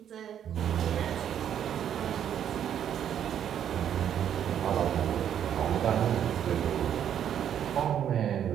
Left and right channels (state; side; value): quieter; left; 9.5 dB